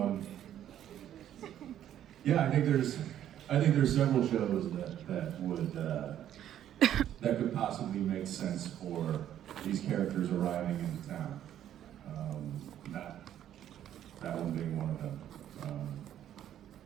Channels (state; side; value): quieter; left; 11.0 dB